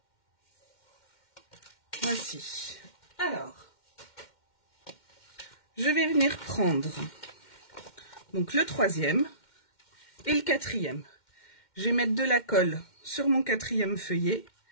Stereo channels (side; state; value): right; late; 2.1 ms